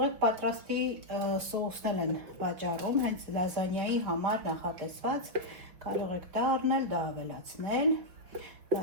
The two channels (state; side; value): late; left; 5.9 ms